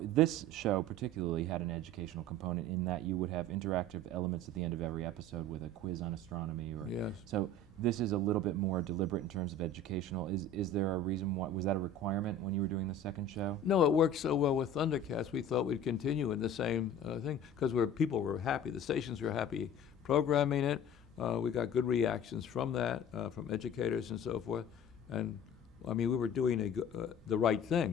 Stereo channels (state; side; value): normal; both; correlation 0.41